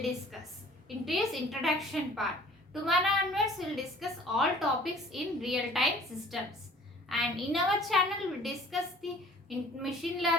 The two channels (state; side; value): normal; both; correlation 0.51